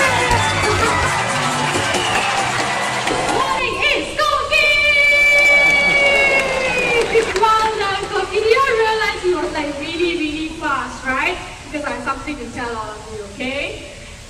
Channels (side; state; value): both; identical; correlation 1.00